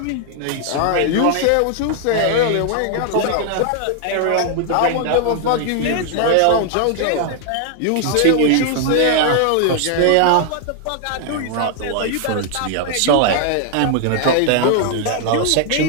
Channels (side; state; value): both; different; correlation 0.00